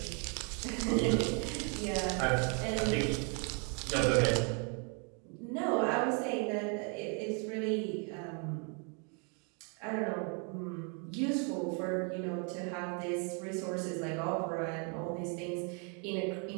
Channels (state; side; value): quieter; left; 37.3 dB